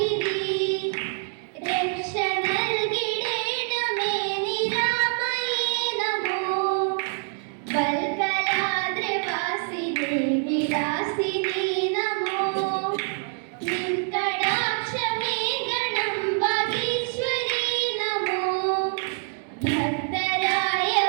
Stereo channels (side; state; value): left; silent; 59 dB below the other